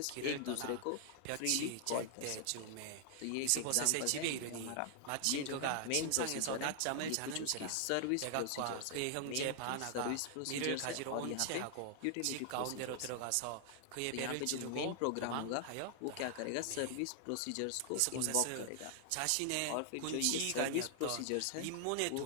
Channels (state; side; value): different; both; correlation 0.00